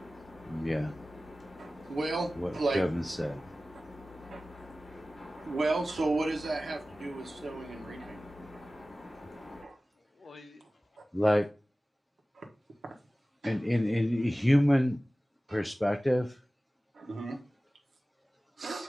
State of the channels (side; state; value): both; normal; correlation 0.97